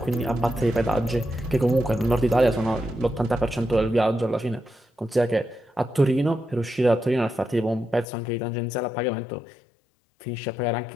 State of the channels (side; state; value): right; drops out; at 8.1 s